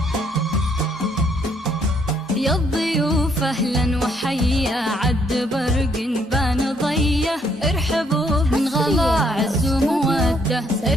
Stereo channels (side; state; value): both; normal; correlation 0.69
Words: الضيوف أهلا وحيا عد برق بان ضيه، ارحبوا من غلا عز ومودة،